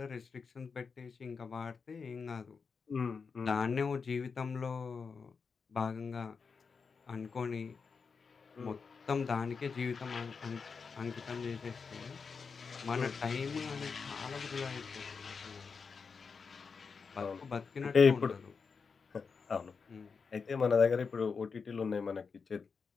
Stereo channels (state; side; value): quieter; right; 5.3 dB